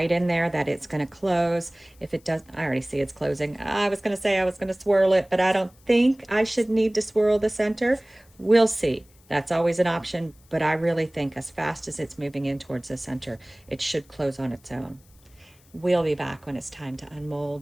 in there that it's going to close. If it doesn't, I already see it's closing. I was going to say I was going to swirl it, but I don't think I should need to swirl the center. We'll see. That's always an option, but I really think as fast as it's moving in towards the center, it should close on its own. We'll be back when it's time to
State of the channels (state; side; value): noise; left; hiss, 30 dB below the sound